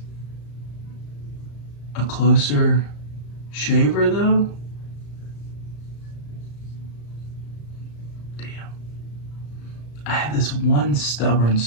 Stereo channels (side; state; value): right; late; 34 ms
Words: a closer shaver though, damn, I have this one stubborn